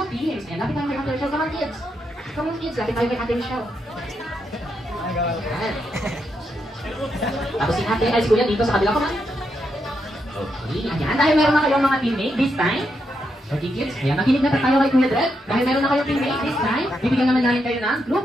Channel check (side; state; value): both; normal; correlation 0.82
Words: teams. And lapit tayo kay Ate Michelle. Come on, kids. Come on, kids. Lapit tayo kay Ate Michelle. Ayan. Tapos si Ate, ay si Kuya dito sa kabila. Come on. Okay, ayan. Dahil meron na kayong mga teammate this time. Okay kids, ayan, makinig na tayo kay Kuya Dred. Dahil meron na kayong teammate this time, bibigyan naman namin kayo ng